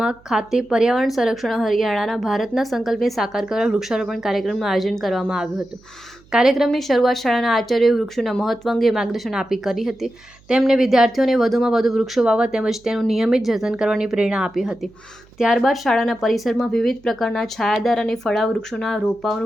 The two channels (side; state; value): right; noise; hum, 28 dB below the sound